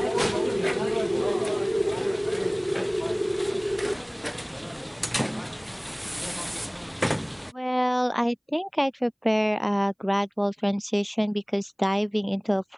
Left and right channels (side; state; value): both; identical; correlation 1.00